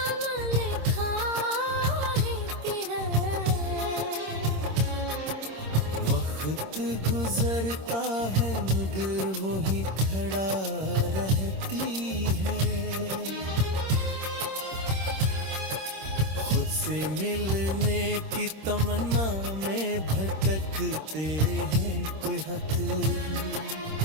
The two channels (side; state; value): left; late; 26 ms